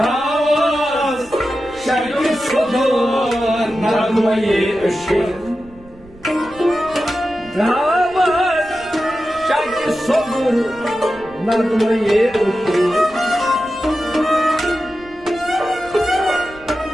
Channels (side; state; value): right; noise; rumble, 23 dB below the sound